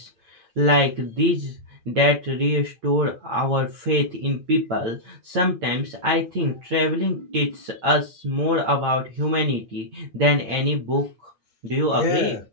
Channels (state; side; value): late; left; 8.9 ms